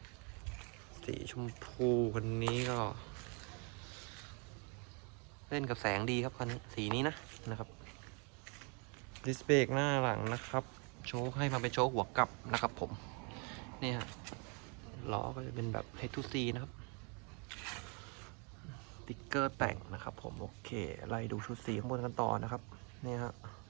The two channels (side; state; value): left; quieter; 34.3 dB